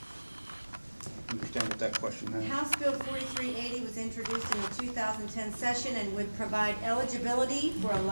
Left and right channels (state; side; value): inverted; both; correlation -1.00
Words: understand what that question is. House Bill 4380 was introduced in the 2010 session and would provide eligibility for a